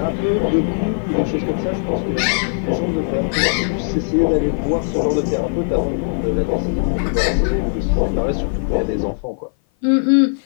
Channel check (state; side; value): silent; right; 56 dB below the other